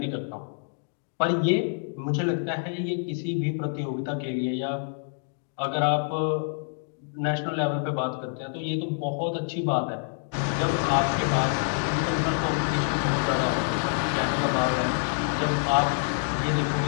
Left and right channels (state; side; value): silent; right; digital silence